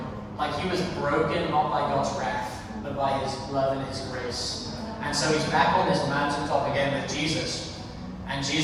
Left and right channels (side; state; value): both; identical; correlation 1.00